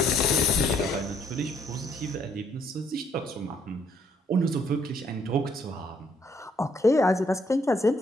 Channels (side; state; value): both; normal; correlation 0.68